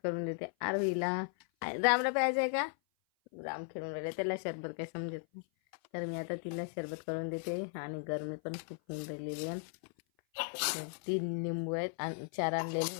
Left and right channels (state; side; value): silent; right; 53 dB below the other